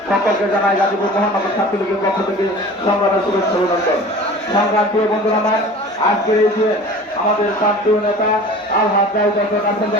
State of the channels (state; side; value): normal; both; correlation 0.41